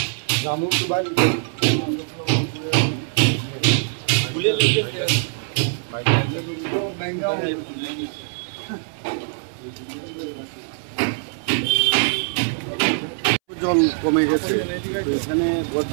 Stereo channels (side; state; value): left; silent; 64 dB below the other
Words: জল কমে গেছে, তো এখানে